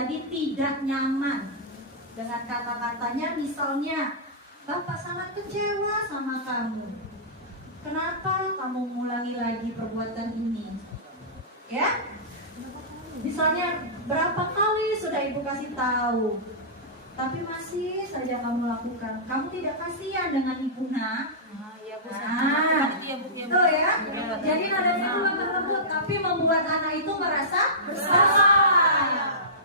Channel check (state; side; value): normal; both; correlation -0.18